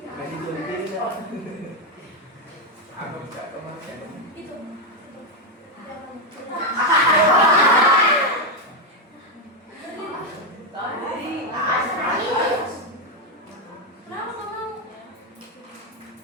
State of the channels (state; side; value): normal; both; correlation 0.05